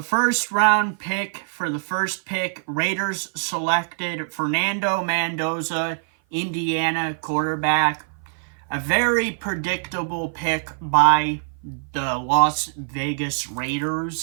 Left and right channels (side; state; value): left; silent; 56 dB below the other